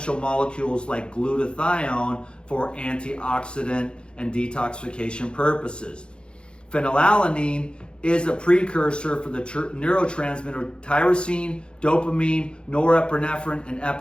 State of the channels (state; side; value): late; right; 0.054 ms